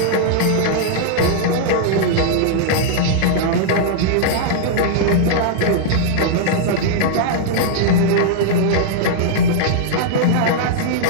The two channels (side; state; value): both; different; correlation -0.02